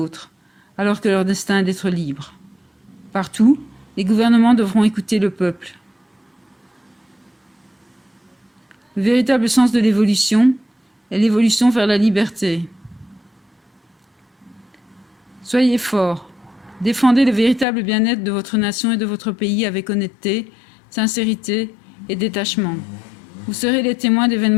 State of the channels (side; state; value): right; drops out; at 17.7 s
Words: alors que leur destin est d'être libres. Partout, les gouvernements devront écouter le peuple. Le véritable sens de l'évolution est l'évolution vers la liberté. Soyez forts, défendez le véritable bien-être de votre nation et de votre pays avec honnêteté, sincérité et détachement. Vous serez les témoins